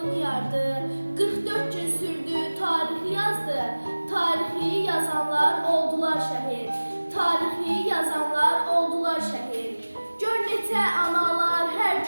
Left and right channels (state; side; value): inverted; both; correlation -1.00